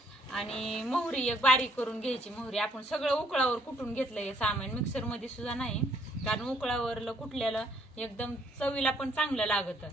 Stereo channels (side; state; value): both; normal; correlation 0.67